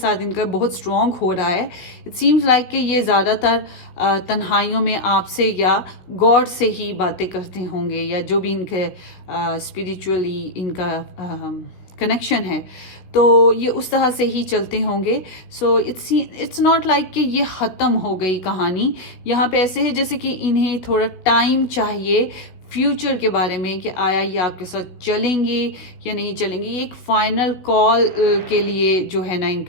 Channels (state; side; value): late; right; 16 ms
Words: इनका बहुत स्ट्रॉन्ग हो रहा है। इट सीम्स लाइक कि ये ज़्यादातर तन्हाइयों में आपसे या गॉड से ही बातें करते होंगे, या जो भी इनके स्पिरिचुअली इनका कनेक्शन है, तो ये उस तरह से ही चलते होंगे। सो इट्स नॉट लाइक कि ये ख़त्म हो गई कहानी। यहाँ पे ऐसे है जैसे कि इन्हें थोड़ा टाइम चाहिए फ्यूचर के बारे में, कि आया ये आपके साथ चलेंगे या नहीं चलेंगे। ये एक फाइनल कॉल के लिए जो है ना,